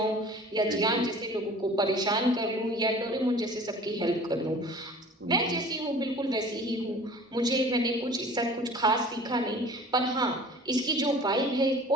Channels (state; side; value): normal; both; correlation 0.45